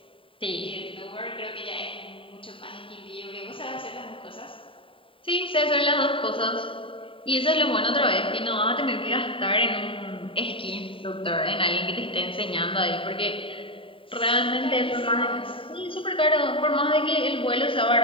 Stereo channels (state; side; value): late; right; 0.25 ms